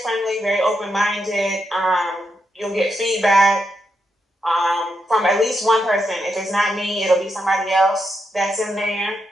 very open-minded. You'll get feedback from at least one person. If it's not me, it'll be somebody else that's in there.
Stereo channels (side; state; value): both; normal; correlation 0.83